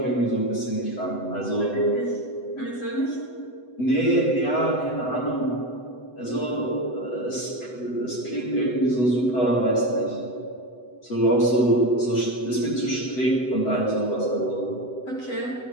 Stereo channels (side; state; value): right; late; 8.0 ms